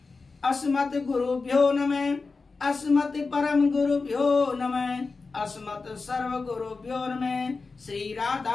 अस्मत् गुरुभ्यो नमः, अस्मत् परम गुरुभ्यो नमः, अस्मत् सर्व गुरुभ्यो नमः, श्री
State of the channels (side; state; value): right; quieter; 4.2 dB